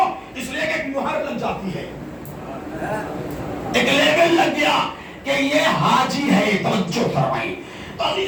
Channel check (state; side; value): identical; both; correlation 1.00